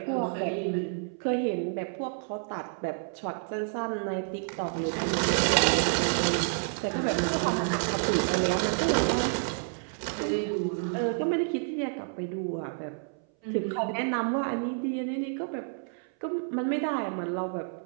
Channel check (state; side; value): silent; left; 58 dB below the other